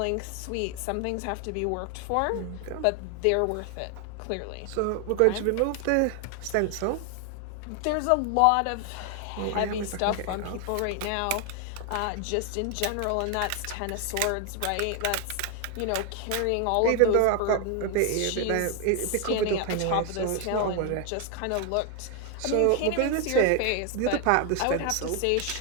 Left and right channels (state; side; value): different; both; correlation 0.00